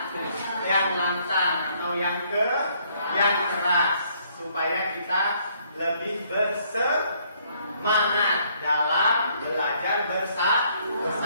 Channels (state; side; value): inverted; both; correlation -0.66